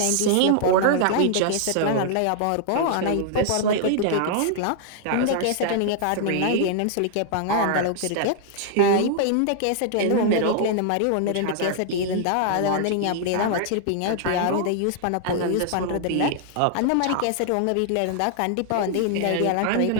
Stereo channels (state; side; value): different; both; correlation 0.00